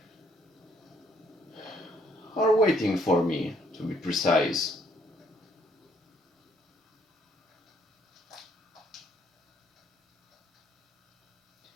waiting for me, to be precise.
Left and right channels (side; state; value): both; normal; correlation 0.67